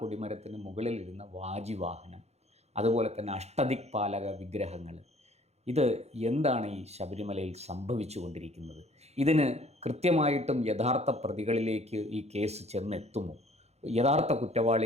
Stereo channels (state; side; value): late; left; 0.31 ms